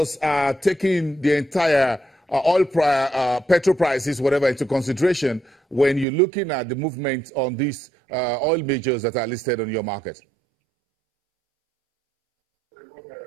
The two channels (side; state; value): left; drops out; at 6.1 s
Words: are taking the entire petrol prices, whatever, into consideration when you're looking at the movement on these oil majors that are listed on your market?